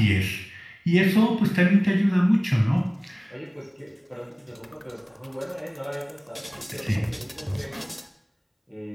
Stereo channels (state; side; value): identical; both; correlation 1.00